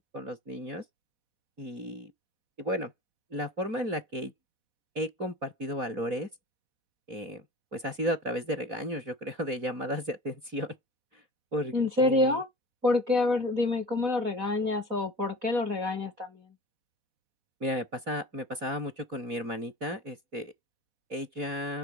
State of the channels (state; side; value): late; left; 4.1 ms